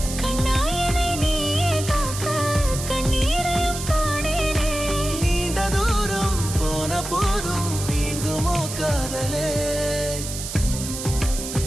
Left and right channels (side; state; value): right; noise; hiss, 8 dB below the sound